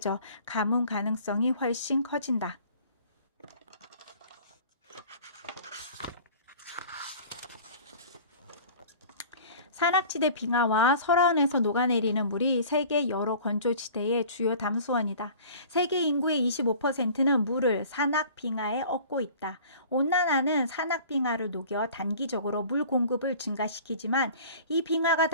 가뭄 가능성이 훨씬 커진다. 산악지대 빙하와 설화원에서 녹아내리는 물이 세계 여러 건조지대의 주요 담수원이다. 세계 인구의 25%는 물을 산악 빙하에 얻고 있다. 온난화는 산악 빙하를 녹여 단기적으로 물 공급을 증가시키지만 이 빙하가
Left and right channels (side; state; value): both; inverted; correlation -0.45